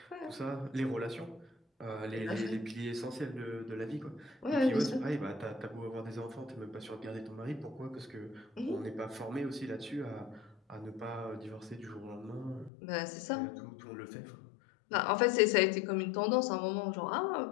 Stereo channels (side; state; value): right; drops out; at 12.7 s